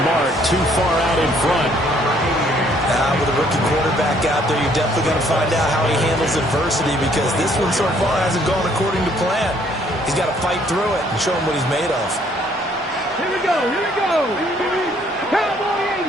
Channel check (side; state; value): both; normal; correlation 0.64